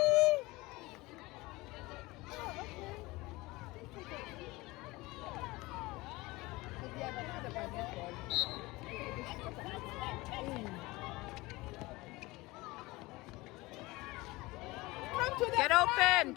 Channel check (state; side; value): quieter; right; 21.4 dB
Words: Come to the Get front. open!